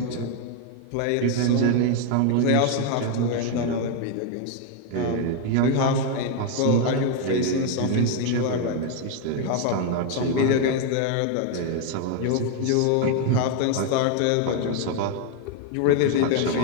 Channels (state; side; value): different; both; correlation 0.01